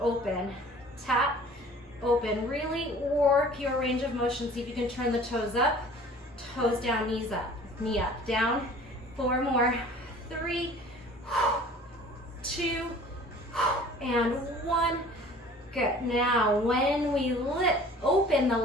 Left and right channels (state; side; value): normal; both; correlation 0.48